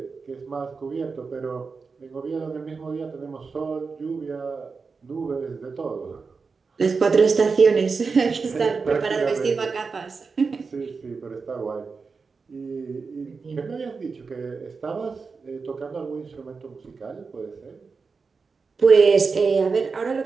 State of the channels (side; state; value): left; quieter; 4.8 dB